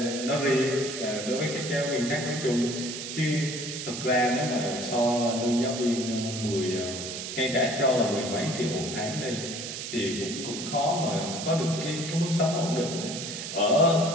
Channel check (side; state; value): right; noise; hiss, 7 dB below the sound